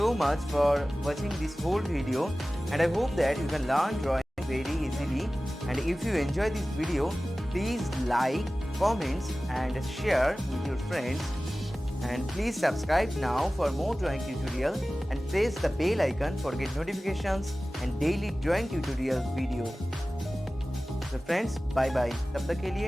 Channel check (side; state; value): both; normal; correlation 0.97